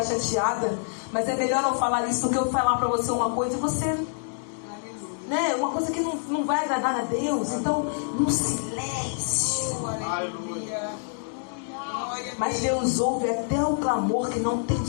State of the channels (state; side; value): silent; right; digital silence